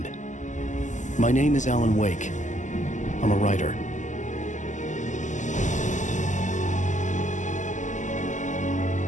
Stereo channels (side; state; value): right; late; 0.36 ms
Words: My name is Alan Wake. I'm a writer.